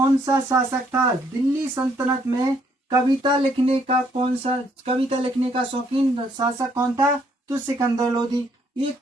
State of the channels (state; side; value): normal; both; correlation 0.69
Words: सा शासक था? दिल्ली सल्तनत में कविता लिखने का शौकीन शासक कौन था? तो सिकंदर लोधी। ये